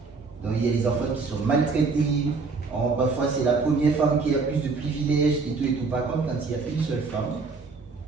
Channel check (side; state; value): left; quieter; 4.4 dB